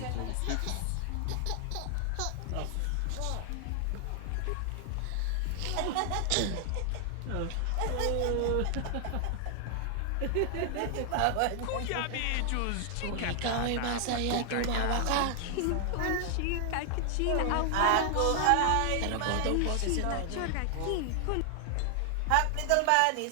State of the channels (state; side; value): different; both; correlation 0.00